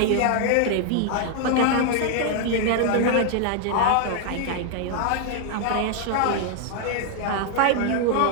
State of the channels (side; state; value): both; different; correlation 0.00